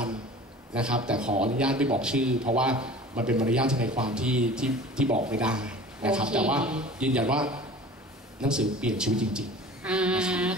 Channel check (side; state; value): both; normal; correlation 0.42